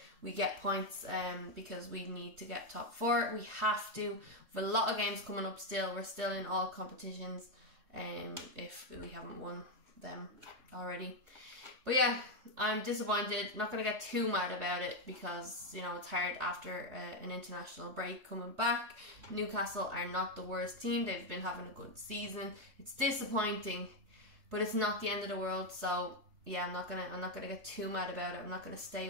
we get points, because we need to get top 4. We have to. We have a lot of games coming up still. We're still in all competitions, if we haven't won them already. But yeah, I'm disappointed. I'm not going to get too mad about it, because, you know, it's hard after an international break coming back. Newcastle are not the worst team. They've been having a good season. It's disappointing, but it's not the end of the world. So yeah, I'm not gonna get too mad about it. I'm not gonna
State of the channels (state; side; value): late; left; 3.2 ms